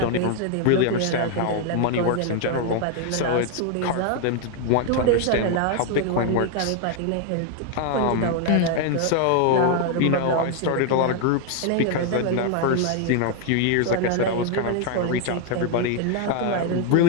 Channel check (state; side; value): different; both; correlation 0.00